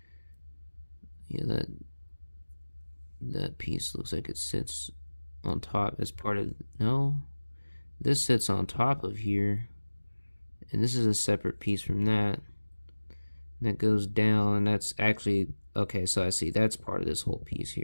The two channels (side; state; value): both; inverted; correlation -1.00